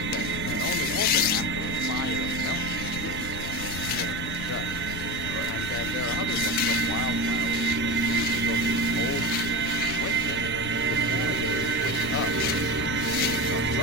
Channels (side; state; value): left; noise; rumble, 9 dB below the sound